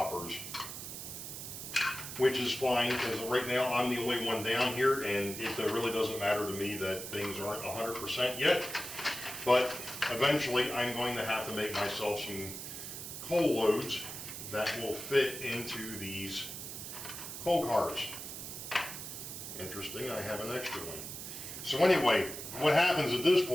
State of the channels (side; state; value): right; noise; hiss, 8 dB below the sound